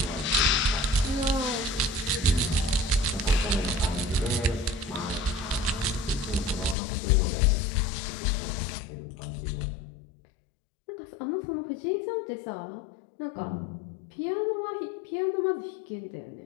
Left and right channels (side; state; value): right; drops out; at 6.8 s